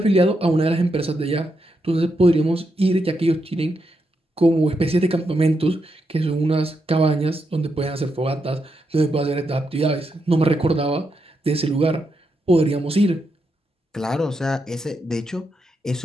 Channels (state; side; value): normal; both; correlation 0.83